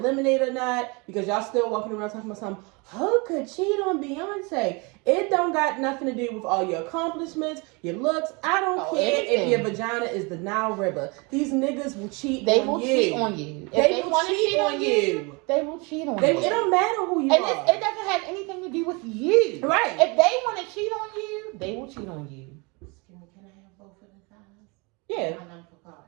Lemonade or not, because y'all still walking around talking about something. Who could cheat on Beyonce? It don't got nothing to do with all your accomplishments, your looks. I don't care if your vagina is the Nile River. These niggas will cheat on you. They will cheat on you. If they want to cheat on you, they will cheat on you. It don't matter who you are. And it doesn't have anything to do with you. Right. If they want to cheat on you, they will cheat on you. both of the sides? Yeah. My number for car.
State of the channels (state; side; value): quieter; left; 29.0 dB